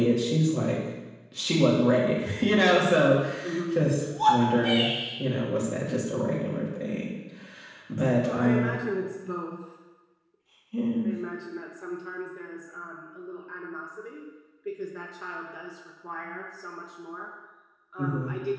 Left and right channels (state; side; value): identical; both; correlation 1.00